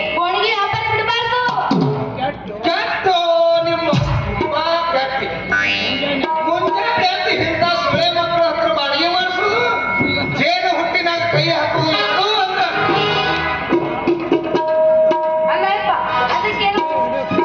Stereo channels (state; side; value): identical; both; correlation 1.00